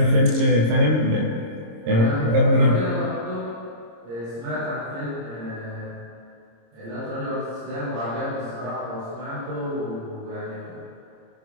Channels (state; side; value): late; left; 26 ms